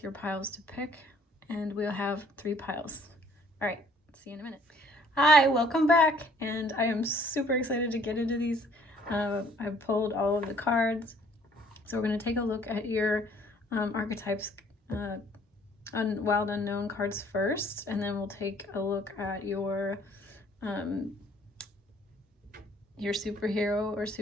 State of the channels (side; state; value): both; normal; correlation 0.59